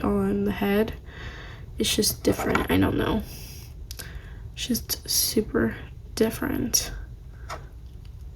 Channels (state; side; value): identical; both; correlation 1.00